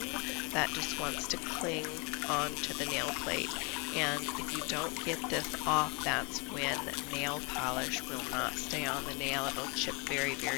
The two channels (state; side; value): quieter; right; 30.0 dB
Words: that just wants to cling onto the nail plate. And if you don't get this off, that's when nail polish will not stay on the nail. It'll chip very,